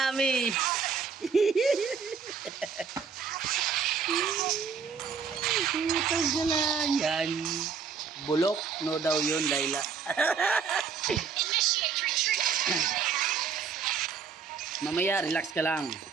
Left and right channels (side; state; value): left; quieter; 6.1 dB